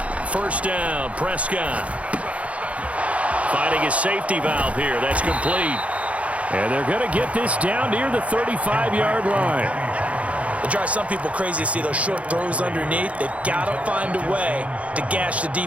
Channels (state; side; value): late; left; 0.065 ms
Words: First down, Prescott. Finding his safety valve here. That's complete. And they're going to get this down near the 35-yard line. It drives some people crazy to see those short throws underneath. They've got to find a way to gash the